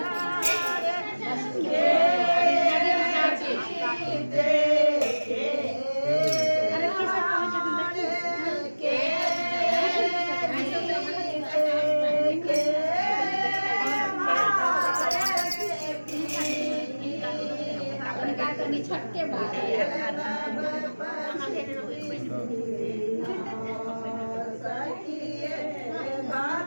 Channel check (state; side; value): inverted; both; correlation -1.00